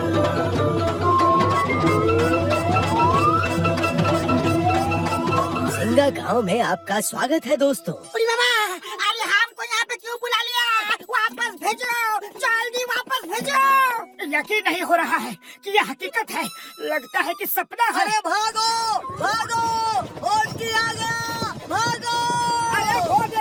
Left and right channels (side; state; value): both; identical; correlation 1.00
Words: सिंगा गांव में आपका स्वागत है दोस्तों। अरे बाबा, अरे हमको यहाँ पे क्यों बुला लिया? वापस भेजो, जल्दी वापस भेजो। यकीन नहीं हो रहा है कि यह हकीकत है। लगता है कि सपना है। अरे भागो भागो, डोंकी आ गया, भागो। अरे वो